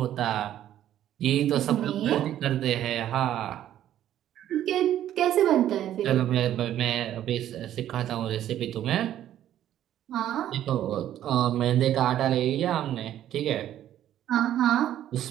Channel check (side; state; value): left; quieter; 11.8 dB